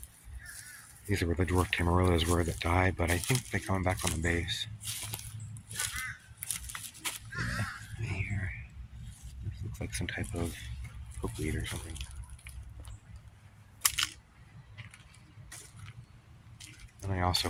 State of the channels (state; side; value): identical; both; correlation 1.00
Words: These are where the dwarf tamarillos were that died, but I think they come back on the base. Yeah, right here. This looks like some type of pokeweed or something. And I also